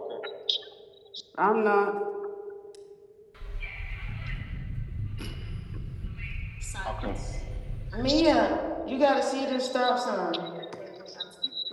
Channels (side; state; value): both; identical; correlation 1.00